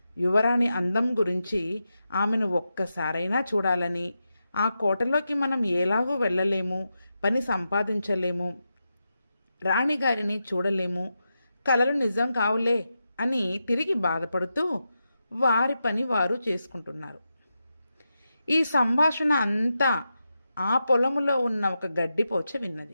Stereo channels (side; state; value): both; inverted; correlation -0.88